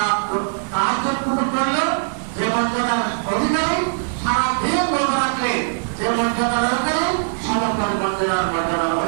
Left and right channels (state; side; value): silent; left; digital silence